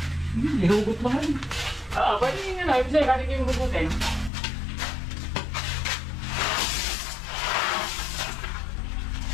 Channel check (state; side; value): drops out; right; at 4.3 s